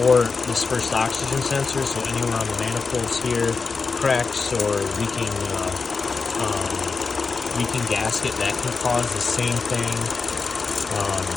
this first oxygen sensor, so anywhere on the manifolds here, cracks or leaking gasket, that can cause the same thing.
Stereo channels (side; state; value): right; quieter; 4.6 dB